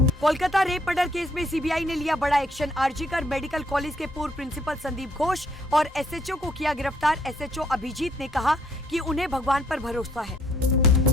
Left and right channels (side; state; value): both; normal; correlation 0.67